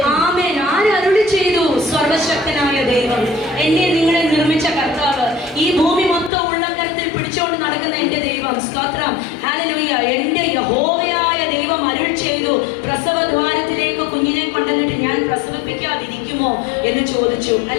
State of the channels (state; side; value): drops out; right; at 6.3 s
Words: ആമേൻ. ആരരുളി ചെയ്തു? സർവശക്തനായ ദൈവം, എന്നെ നിങ്ങളെ നിർമ്മിച്ച കർത്താവ്, ഈ ഭൂമി മൊത്തം ഉള്ളംകരത്തിൽ പിടിച്ചുകൊണ്ട് നടക്കുന്ന എന്റെ ദൈവം. സ്തോത്രം. ഹല്ലേലൂയ. എന്റെ യഹോവയായ ദൈവം അരുൾ ചെയ്തു, പ്രസവദ്വാരത്തിലേക്ക് കുഞ്ഞിനെ കൊണ്ടുവന്നിട്ട് ഞാൻ പ്രസവിപ്പിക്കാതിരിക്കുമോ എന്ന് ചോദിച്ചു.